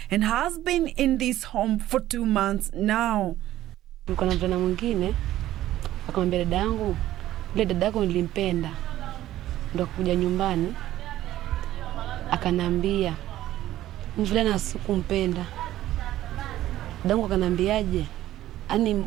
and has been in this home for 2 months now. Niko na mvulana mwingine akamwambia dada yangu, ile dada yako nilimpenda. Ndio kuja nyumbani akanambia mvulana sikumpenda. Dadangu akanambiaje? Ani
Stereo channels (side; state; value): left; quieter; 14.0 dB